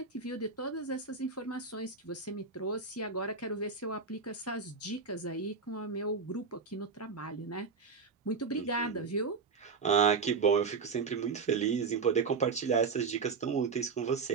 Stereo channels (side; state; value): left; quieter; 5.0 dB